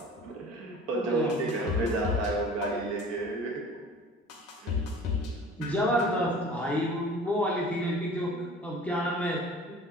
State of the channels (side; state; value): both; normal; correlation 0.44